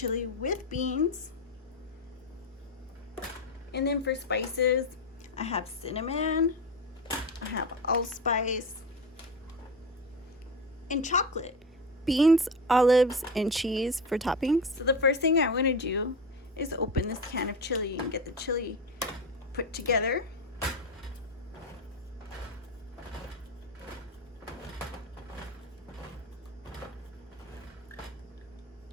with beans. And then for spices, I have cinnamon, I have allspice, and chocolate. Beans, olives, and cheese for toppings. So the first thing I want to do is open this can of chili and get the chili put together.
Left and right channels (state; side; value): normal; both; correlation 0.21